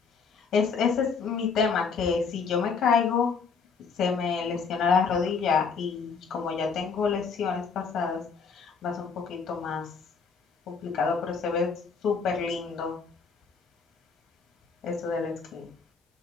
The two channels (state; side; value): quieter; right; 5.5 dB